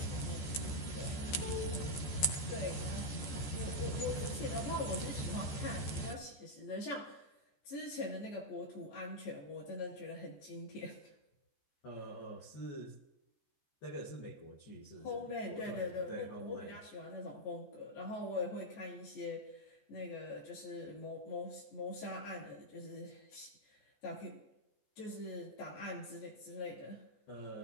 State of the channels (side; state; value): right; late; 14 ms